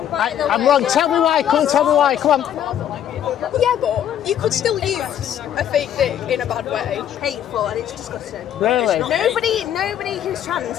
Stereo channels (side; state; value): right; quieter; 10.2 dB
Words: I'm wrong. Tell me why. Come on, tell me why. Come on. Yeah, but you could still use a fake dick in a bad way. Hateful and it's disgusting. Really? Nobody who's trans